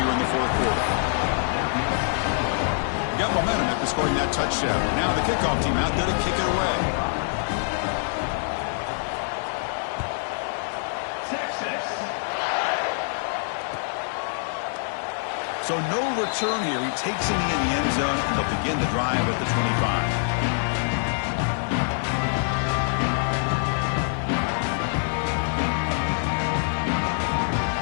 in the 4th quarter. Got momentum after scoring that touchdown. Now the kickoff team out there to kick it away. So no return here. He takes him in the end zone, and they'll begin the drive at the 25.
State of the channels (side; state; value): right; silent; digital silence